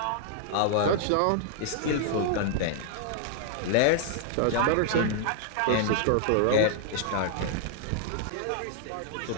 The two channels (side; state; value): both; different; correlation -0.01